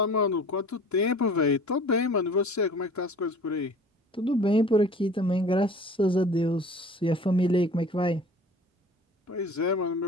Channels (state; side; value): normal; both; correlation 0.45